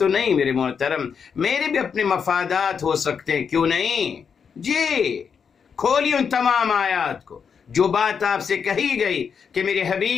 نہیں میرے محترم، میرے بھی اپنے مفادات ہو سکتے ہیں، کیوں نہیں. جی کھولی ان تمام آیات کو. جو بات آپ سے کہی گئی کہ میرے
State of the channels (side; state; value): right; quieter; 6.6 dB